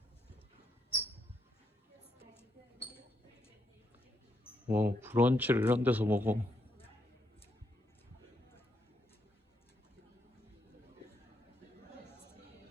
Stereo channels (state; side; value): normal; both; correlation 0.78